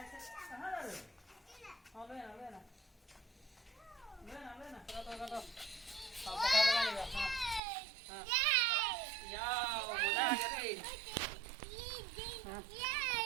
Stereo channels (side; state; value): left; drops out; at 7.6 s